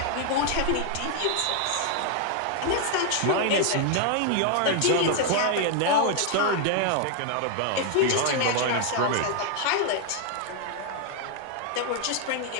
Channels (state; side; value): different; both; correlation 0.00